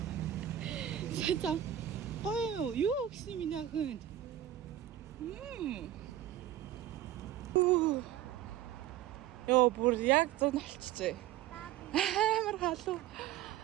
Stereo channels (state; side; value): quieter; left; 12.1 dB